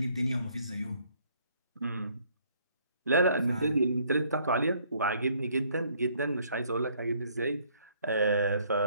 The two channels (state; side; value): inverted; both; correlation -0.64